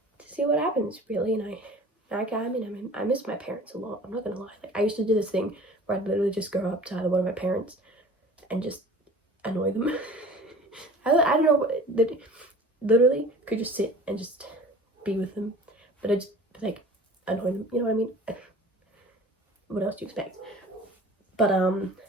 to see what happens, really. And I miss my parents a lot, I'm not gonna lie. Like, I used to do this thing where I'd literally just go up to either one of my parents and just annoy them. I don't know, that literally could just sit and just be with them, but I just like annoy them, you know what I mean? What else do you expect? But I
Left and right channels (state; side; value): normal; both; correlation 0.45